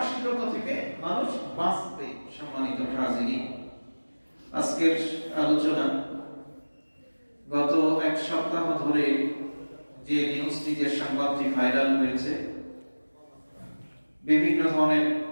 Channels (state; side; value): inverted; both; correlation -1.00